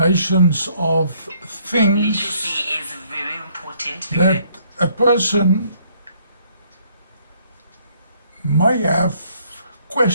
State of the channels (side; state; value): both; inverted; correlation -0.65